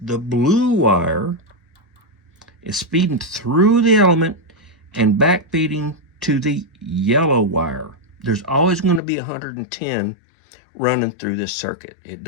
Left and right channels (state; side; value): drops out; right; at 9.0 s